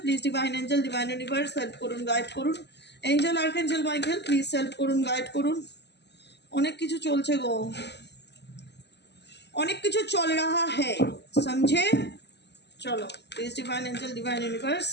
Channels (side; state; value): right; late; 0.50 ms